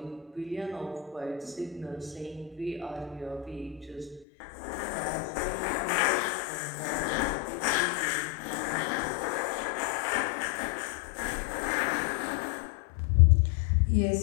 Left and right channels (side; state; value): right; drops out; at 4.2 s